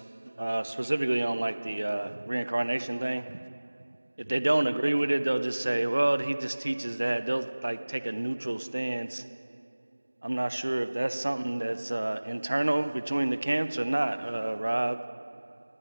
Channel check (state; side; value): inverted; both; correlation -1.00